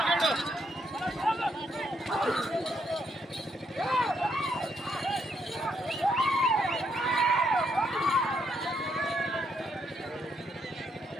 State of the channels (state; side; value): normal; both; correlation 0.75